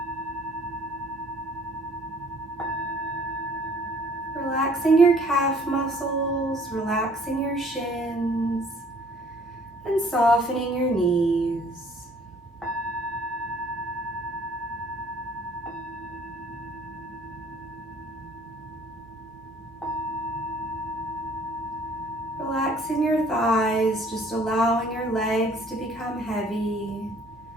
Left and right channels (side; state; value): both; normal; correlation 0.57